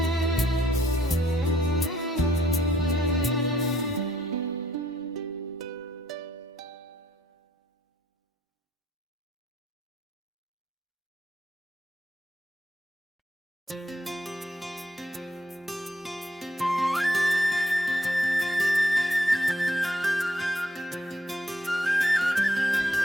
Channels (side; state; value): both; normal; correlation 0.70